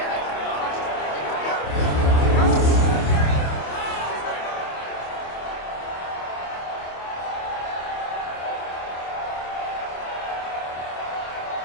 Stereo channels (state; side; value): late; right; 27 ms